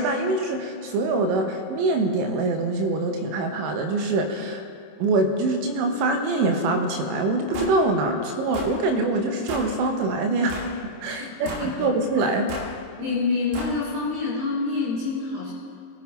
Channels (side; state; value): left; late; 26 ms